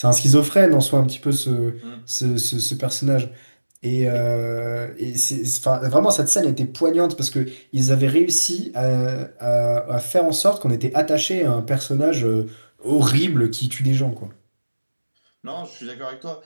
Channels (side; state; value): both; inverted; correlation -1.00